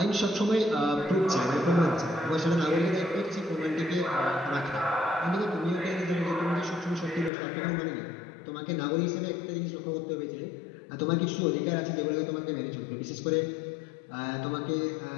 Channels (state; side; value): drops out; right; at 7.3 s